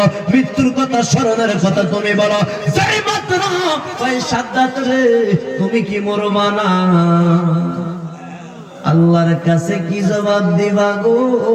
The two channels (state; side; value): identical; both; correlation 1.00